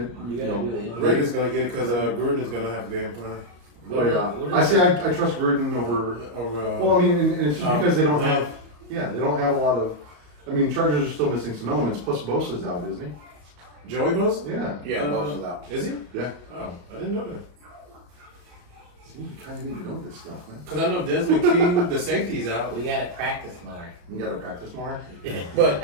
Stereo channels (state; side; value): late; left; 34 ms